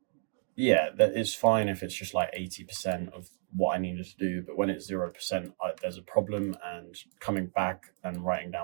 yeah, that is fine if it's just like 80% of what I needed to do, but when it's 0%, there's a problem. And coming back and writing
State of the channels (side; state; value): left; silent; digital silence